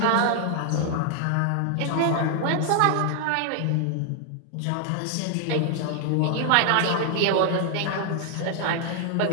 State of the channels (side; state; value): both; different; correlation 0.00